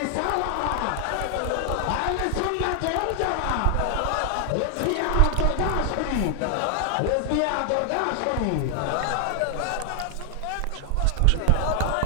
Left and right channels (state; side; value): different; both; correlation 0.00